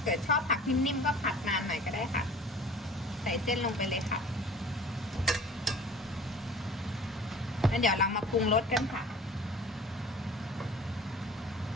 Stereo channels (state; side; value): normal; both; correlation 0.44